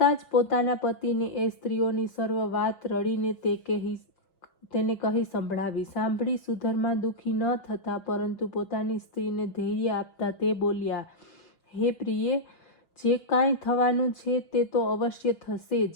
જ પોતાના પતિને એ સ્ત્રીઓની સર્વ વાત રડીને તેને કહી સંભળાવી. સાંભળી સુધર્મા દુઃખી ન થતા, પરંતુ પોતાની સ્ત્રીને ધૈર્ય આપતા તે બોલ્યા, હે પ્રિયે, જે કાંઈ થવાનું છે તે તો અવશ્ય થશે જ.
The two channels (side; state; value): right; late; 6.2 ms